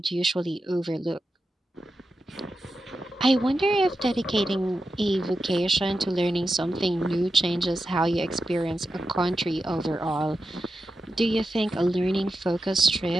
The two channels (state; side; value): normal; both; correlation 0.91